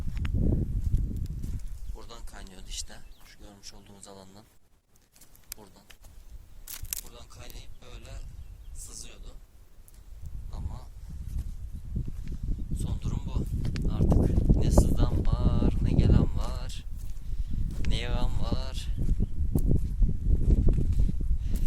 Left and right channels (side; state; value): both; identical; correlation 1.00